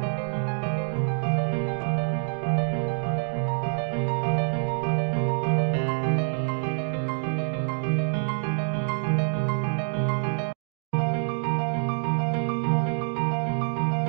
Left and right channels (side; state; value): left; silent; 61 dB below the other